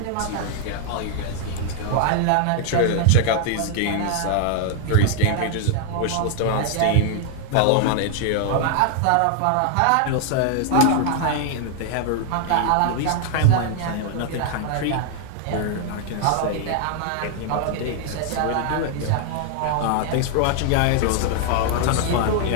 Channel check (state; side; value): different; both; correlation 0.00